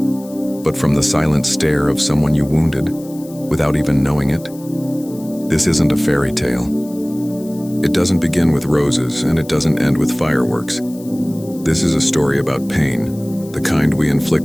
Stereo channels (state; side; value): noise; left; hiss, 22 dB below the sound